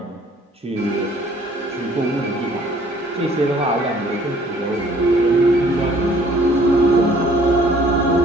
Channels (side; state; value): both; normal; correlation 0.57